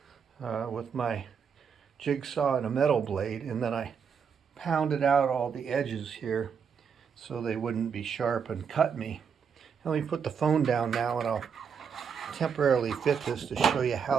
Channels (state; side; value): quieter; left; 6.7 dB